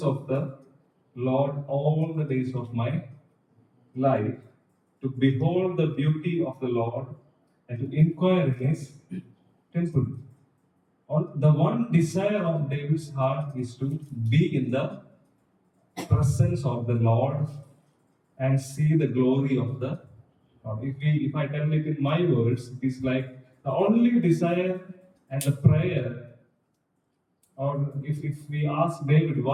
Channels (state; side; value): identical; both; correlation 1.00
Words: of the Lord all the days of my life, to behold the beauty of the Lord and to inquire in his temple. The one desire of David's heart is to be in the presence of the Lord and see the glory of the Lord. If I tell it in my words, it is like the only desire and the prayer. Or if we ask David,